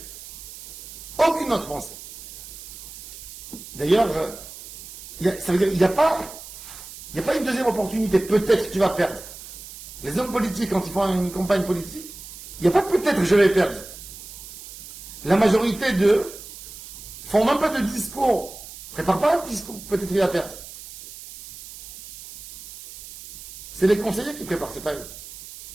Aucune autre pensée. D'ailleurs, ça veut dire il n'y a pas une deuxième opportunité. Peut-être que tu vas perdre. Les hommes politiques, quand ils font une campagne politique, il n'y a pas peut-être que je vais perdre. La majorité d'eux font même pas de discours. Prépare pas un discours, peut-être il va perdre. C'est les conseillers qui préparent, c'est pas eux.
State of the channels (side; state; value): right; noise; hiss, 14 dB below the sound